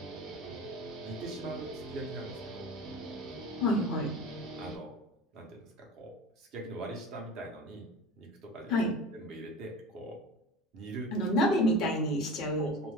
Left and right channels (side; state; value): both; normal; correlation 0.34